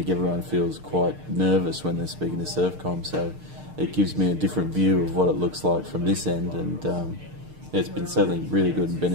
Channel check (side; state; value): left; late; 6.6 ms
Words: everyone feels quite nervous when they're speaking to Surfcom, so it gives me a different view of what it looks like from this end, and it's been certainly really good and